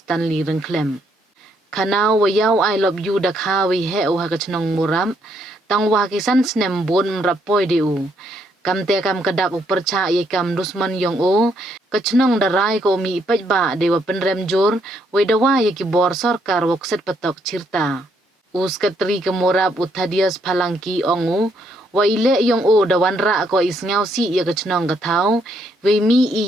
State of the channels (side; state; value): both; normal; correlation 0.72